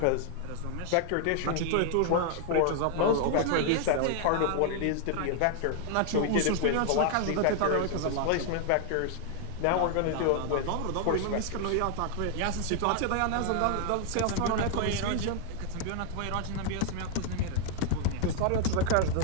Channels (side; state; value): both; different; correlation 0.00